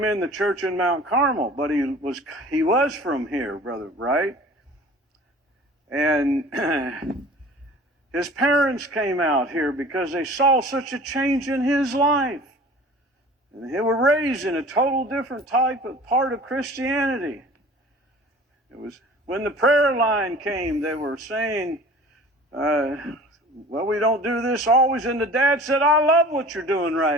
in the church in Mount Carmel, but he was from here, Brother Bright. And his parents came out here because they saw such a change in his life. And they were raised in a total different type of part of Christianity. It was when the prayer line came, they were saying, well, we don't do this always. And the dad said, I love what you're doing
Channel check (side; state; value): both; normal; correlation 0.44